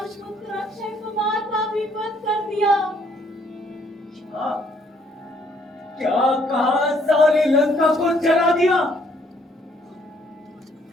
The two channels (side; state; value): both; normal; correlation 0.66